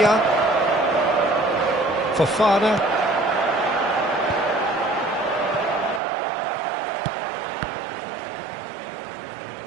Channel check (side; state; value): left; drops out; at 6.0 s